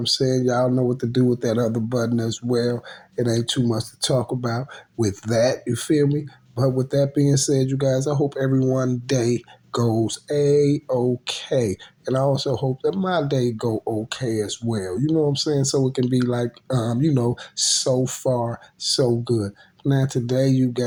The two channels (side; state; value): both; identical; correlation 1.00